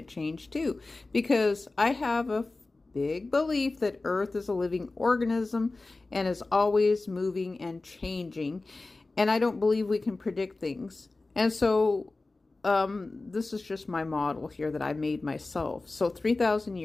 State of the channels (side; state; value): right; quieter; 3.3 dB